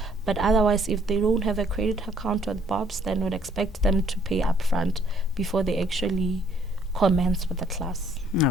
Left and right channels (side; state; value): both; normal; correlation 0.64